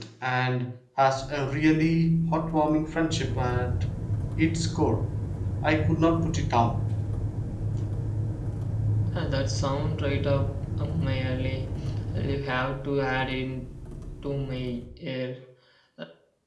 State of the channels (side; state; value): both; identical; correlation 1.00